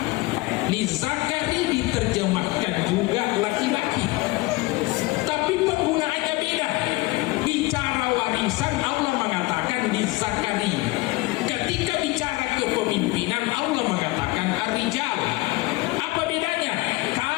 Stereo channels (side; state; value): right; quieter; 21.9 dB